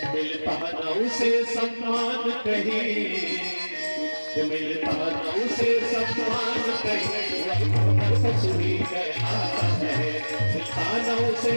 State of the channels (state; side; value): inverted; both; correlation -1.00